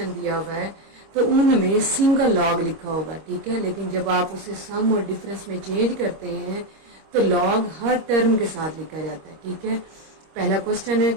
दिया हुआ है तो उनमें सिंगल लॉग लिखा होगा, ठीक है। लेकिन जब आप उसे सम और डिफरेंस में चेंज करते हैं तो लॉग हर टर्म के साथ लिखा जाता है, ठीक है। पहला क्वेश्चन है,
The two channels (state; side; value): late; left; 26 ms